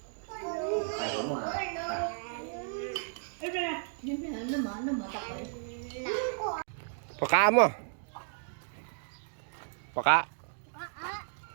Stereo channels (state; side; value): silent; left; digital silence